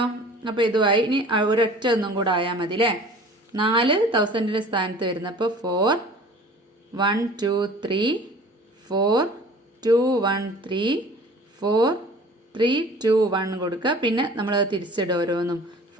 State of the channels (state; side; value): normal; both; correlation 0.46